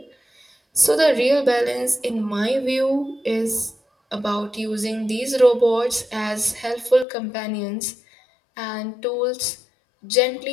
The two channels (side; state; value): right; drops out; at 7.1 s